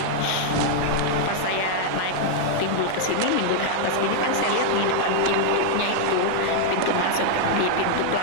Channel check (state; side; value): different; both; correlation -0.01